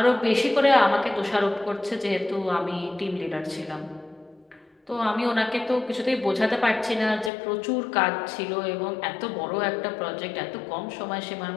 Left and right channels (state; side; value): drops out; right; at 7.3 s